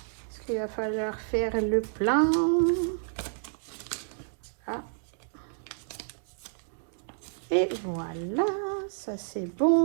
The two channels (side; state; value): left; silent; 58 dB below the other